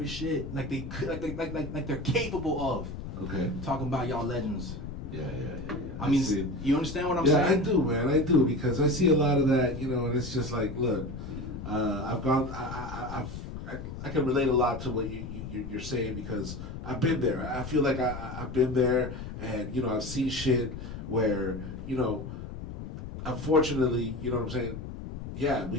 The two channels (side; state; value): left; noise; rumble, 9 dB below the sound